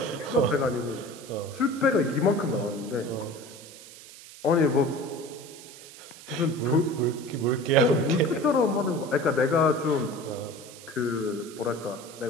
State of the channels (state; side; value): noise; right; hiss, 17 dB below the sound